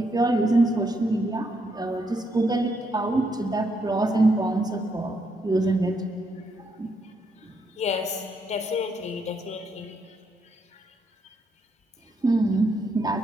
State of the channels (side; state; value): both; normal; correlation 0.77